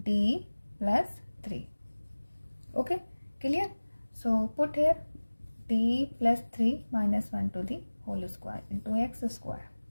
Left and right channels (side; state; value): both; inverted; correlation -1.00